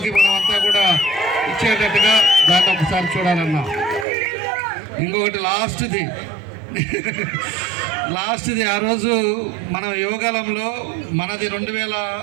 మనం అంతా కూడా ఇచ్చేటట్టుగా దాన్ని ఒకసారి చూడాలన్నా. ఇంకొకటి లాస్ట్ది ఆ రోజు మనం యోగాలంలో మనది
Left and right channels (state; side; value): drops out; left; at 4.0 s